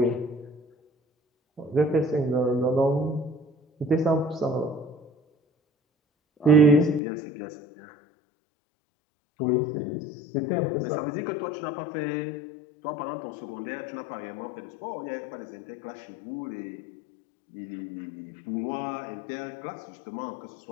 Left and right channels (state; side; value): drops out; right; at 7.0 s